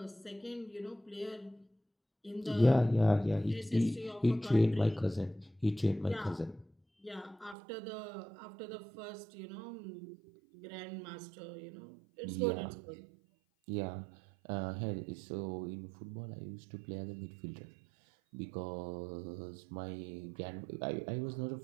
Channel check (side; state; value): left; drops out; at 7.6 s